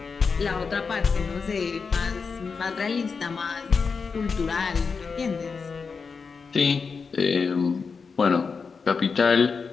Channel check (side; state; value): right; quieter; 5.2 dB